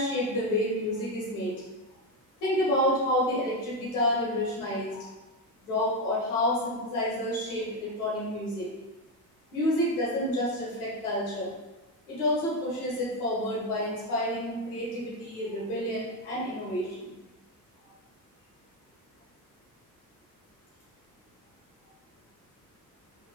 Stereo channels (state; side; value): normal; both; correlation 0.10